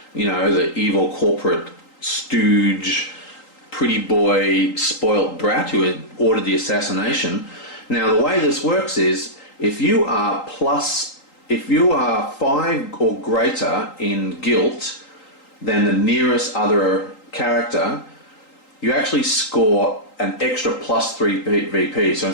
you know, the evil corporate stooge, pretty boy, spoilt brat who had ordered the assassination. Now, the way this works is, if you are 5 or greater in guilt than the nearest other character, you actually score an extra +3 VP. So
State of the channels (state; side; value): late; right; 3.8 ms